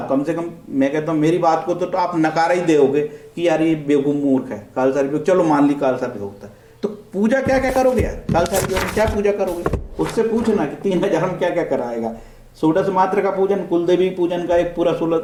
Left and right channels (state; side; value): identical; both; correlation 1.00